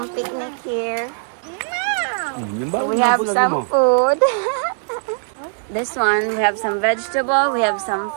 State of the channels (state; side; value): silent; left; digital silence